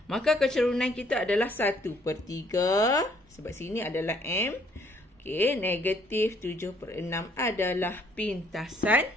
Maka kecerunan kita adalah 1 per 3. Sebab sini adalah M. Okey, negatif 7 per 6 adalah pintasan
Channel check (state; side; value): normal; both; correlation 0.64